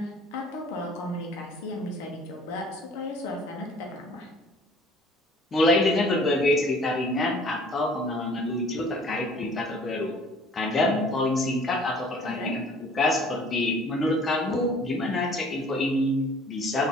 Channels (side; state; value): both; normal; correlation 0.52